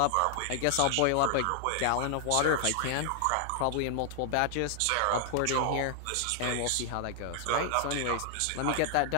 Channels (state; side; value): different; both; correlation 0.00